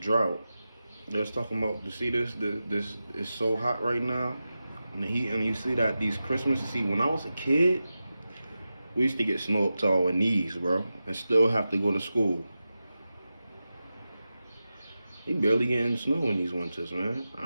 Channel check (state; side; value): inverted; both; correlation -0.93